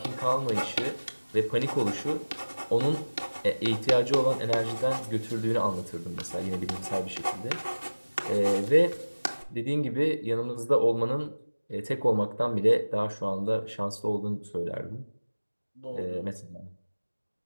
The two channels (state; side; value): inverted; both; correlation -1.00